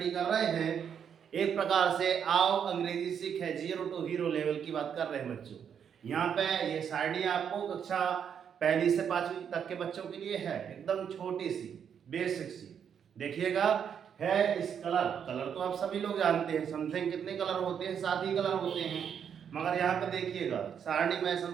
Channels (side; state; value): left; quieter; 7.9 dB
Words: कर रहे हैं एक प्रकार से आओ अंग्रेजी सीख है 0 to हीरो लेवल की बात कर रहे हैं बच्चों। यहाँ पे ये सारणी आपको कक्षा पहली से 5वीं तक के बच्चों के लिए है, एकदम छोटी सी बेसिक सी। देखिएगा है इस कलर। कलर तो आप सभी लोग जानते हैं, समथिंग कितने कलर होते हैं, 7 ही कलर होते हैं। मगर यहाँ पे देखिएगा सारणी में